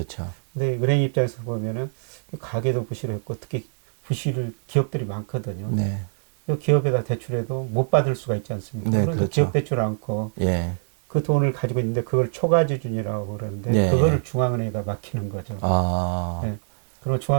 근데 은행 입장에서 보면은 가게도 부실했고 특히 부실을 기업들이 많거든요. 네. 기업에다 대출해도 못 받을 수가 있지 않습니까? 네, 그러니까 기업 그렇죠. 대출 않고 예. 그 돈을 가지고 있는데 그걸 초과지준이라고 그러는데 네. 그거를 중앙은행에다 맡기는 거죠. 아, 예. 그럼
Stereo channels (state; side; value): silent; left; digital silence